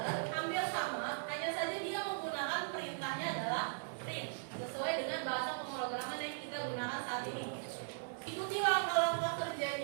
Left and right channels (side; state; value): left; silent; 52 dB below the other